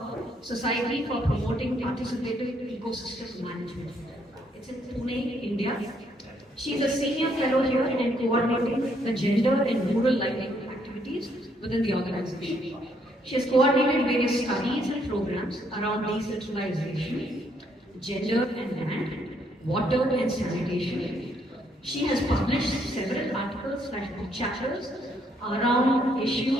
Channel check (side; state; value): both; normal; correlation 0.71